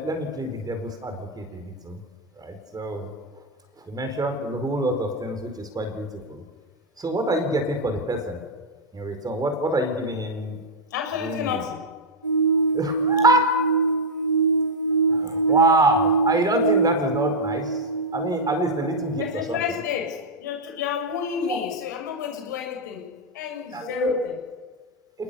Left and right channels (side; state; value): both; normal; correlation -0.02